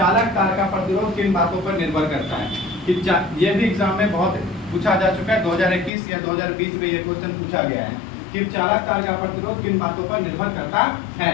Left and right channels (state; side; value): drops out; right; at 5.9 s